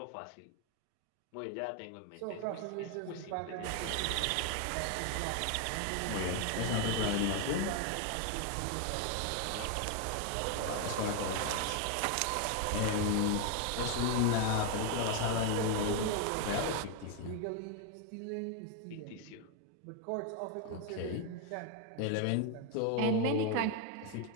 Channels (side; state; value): both; different; correlation 0.01